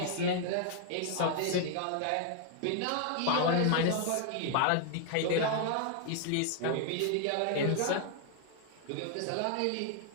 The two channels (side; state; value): both; different; correlation 0.00